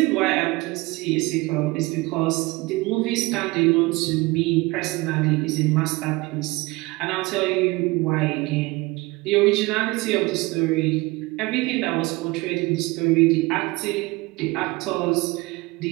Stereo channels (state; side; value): quieter; left; 22.7 dB